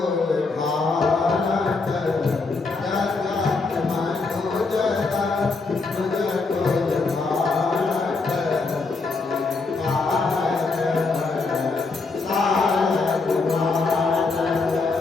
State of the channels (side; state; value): right; quieter; 4.0 dB